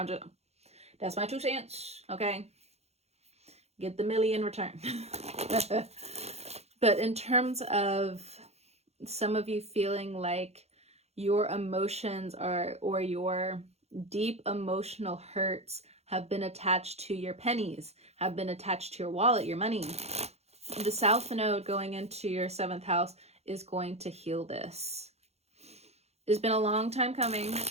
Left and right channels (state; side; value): late; left; 0.31 ms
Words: that's my 2 cents, okay? Get the milli in return. But in terms of some of you feeling like your emotions or your deep emotional hurts have been attached to your pennies, have been attached to your wallet, your money. The South Node going into your 7th house is going to heal this. It's been a long time coming.